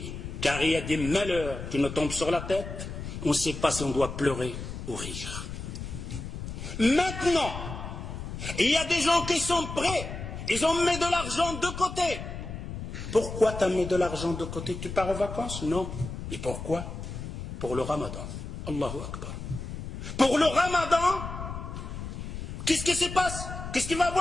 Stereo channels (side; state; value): left; noise; rumble, 8 dB below the sound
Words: car il y a des malheurs qui nous tombent sur la tête, on ne sait pas si on doit pleurer ou rire. Maintenant, il y a des gens qui sont prêts, ils ont mis de l'argent de côté. Pourquoi tu as mis de l'argent de côté? Tu pars en vacances? Non. Et pourquoi? Pour le ramadan. Allahu Akbar. Pour le ramadan, qu'est-ce qui se passe? Qu'est-ce qu'il va